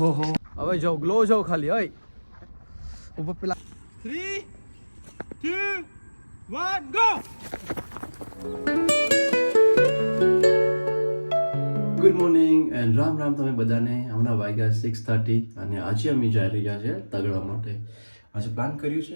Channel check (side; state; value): both; inverted; correlation -1.00